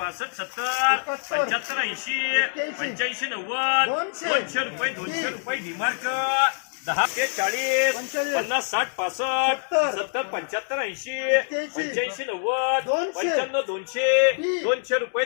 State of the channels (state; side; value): silent; right; digital silence